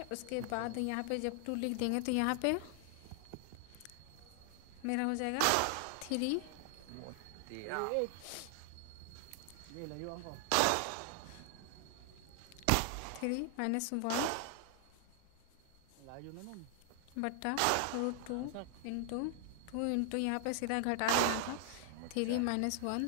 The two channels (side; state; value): both; different; correlation 0.00